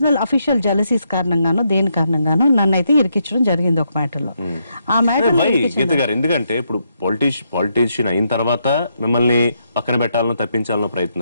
అఫీషియల్ జెలసీస్ కారణంగానో దేని కారణంగానో నన్ను అయితే ఇరికించడం జరిగింది ఒక మ్యాటర్లో. ఆ మ్యాటర్ ఎందుకంటే ఇప్పుడు పాలిటీషియన్ అయిన తర్వాత మిమ్మల్ని పక్కన పెట్టాలనో తప్పించాలనో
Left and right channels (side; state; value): both; inverted; correlation -0.79